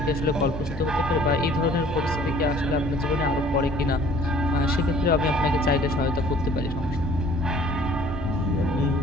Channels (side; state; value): both; normal; correlation 0.53